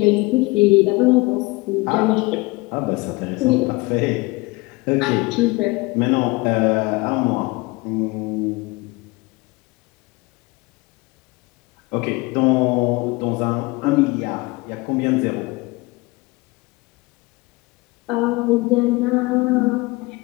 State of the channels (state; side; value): quieter; right; 23.7 dB